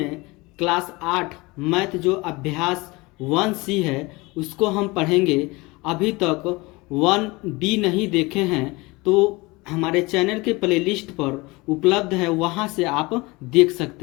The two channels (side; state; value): right; quieter; 23.6 dB